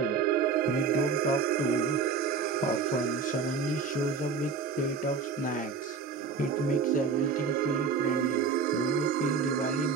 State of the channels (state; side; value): quieter; left; 5.2 dB